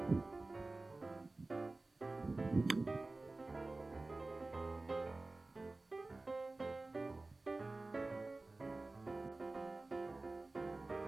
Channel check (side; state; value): left; quieter; 3.2 dB